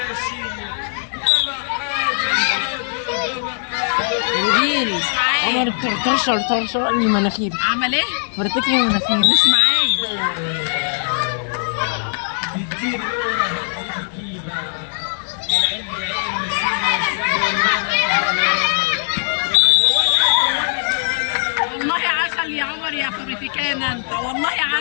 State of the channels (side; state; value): right; silent; digital silence